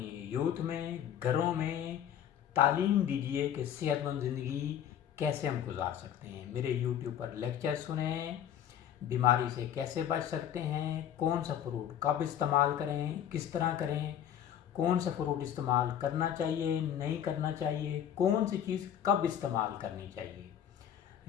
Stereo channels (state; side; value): quieter; right; 9.9 dB